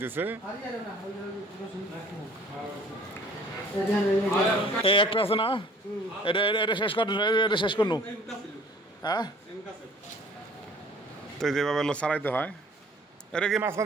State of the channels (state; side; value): normal; both; correlation 0.52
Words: এই একটা আছে না, এটা এটা শেষ কর, এটা শেষ করনু। হ্যাঁ, তো যেভাবে সারাইতে হয়। এটা কি